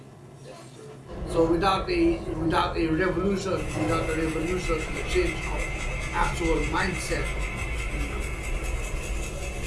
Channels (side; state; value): both; identical; correlation 1.00